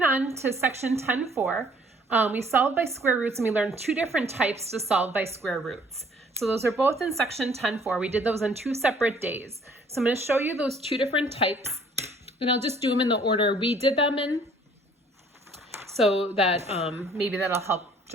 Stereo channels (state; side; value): normal; both; correlation 0.58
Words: on to section 10.4. We solved by square roots, and we learned two different types to solve by square roots. So those are both in section 10.4. We did those on 2 separate days. So I'm going to show you those two different types, and I'll just do them in the order we did them in, so that maybe that'll help